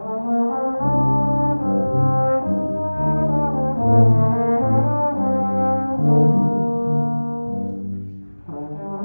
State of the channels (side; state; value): both; inverted; correlation -1.00